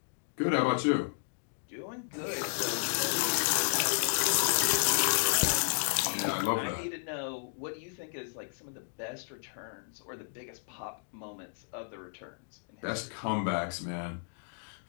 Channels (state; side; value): silent; right; digital silence